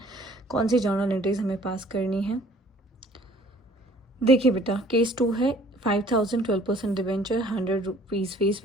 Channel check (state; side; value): normal; both; correlation 0.55